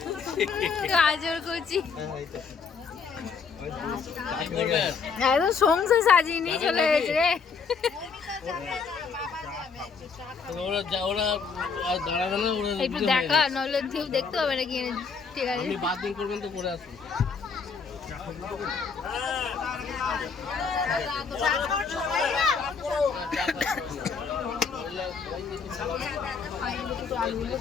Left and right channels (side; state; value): right; quieter; 5.5 dB